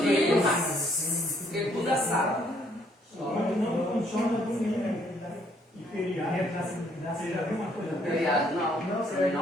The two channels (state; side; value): normal; both; correlation 0.67